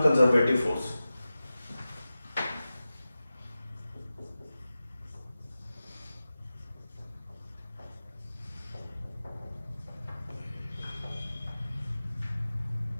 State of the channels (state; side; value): inverted; both; correlation -0.95